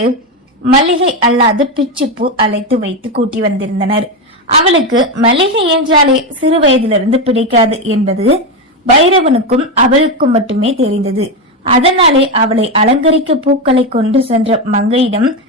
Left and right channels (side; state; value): both; normal; correlation 0.11